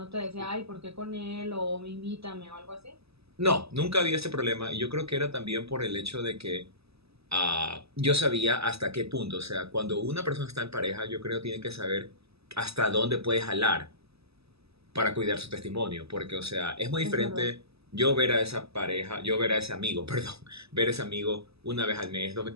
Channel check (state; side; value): late; left; 0.78 ms